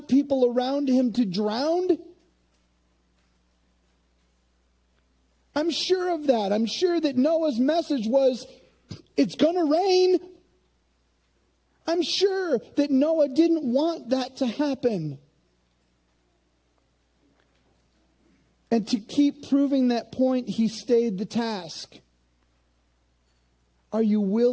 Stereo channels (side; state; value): both; identical; correlation 1.00